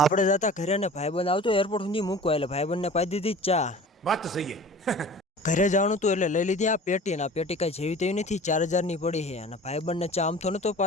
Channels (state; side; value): normal; both; correlation 0.41